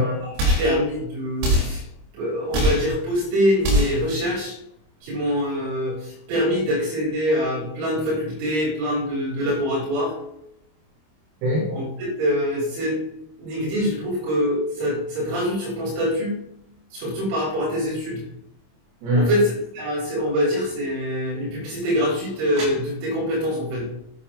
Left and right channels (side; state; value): left; late; 26 ms